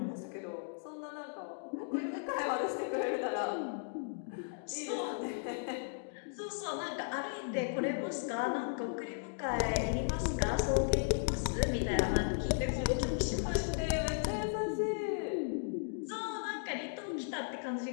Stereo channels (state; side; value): silent; right; digital silence